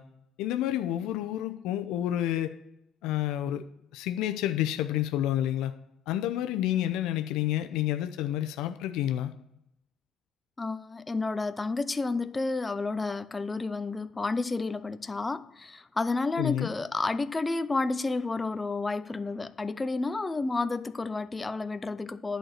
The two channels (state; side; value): quieter; right; 6.1 dB